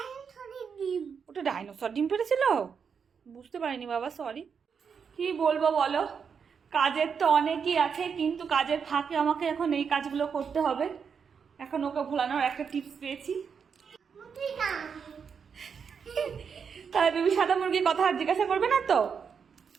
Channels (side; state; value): left; quieter; 6.5 dB